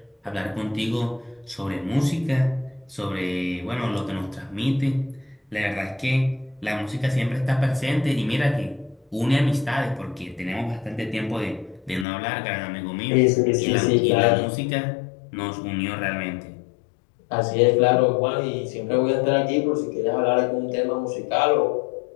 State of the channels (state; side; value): drops out; right; at 12.1 s